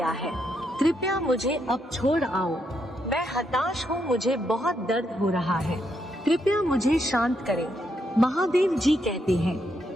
है। कृपया मुझे अब छोड़ आओ। मैं हताश हूँ, मुझे बहुत दर्द हो रहा है। कृपया मुझे शांत करें। महादेव जी कहते हैं,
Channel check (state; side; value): normal; both; correlation 0.79